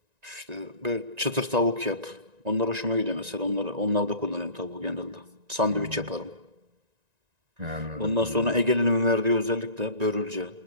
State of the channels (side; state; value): left; late; 1.9 ms